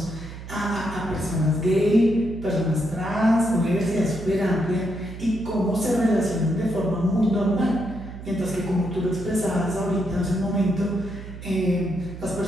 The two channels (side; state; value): right; noise; hum, 12 dB below the sound